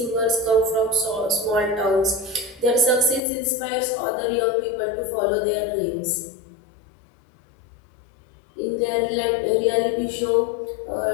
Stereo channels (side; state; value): right; drops out; at 3.2 s